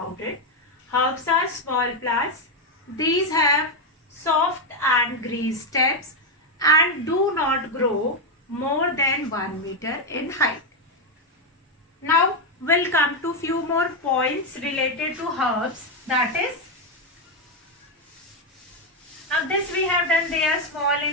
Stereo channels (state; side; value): normal; both; correlation 0.04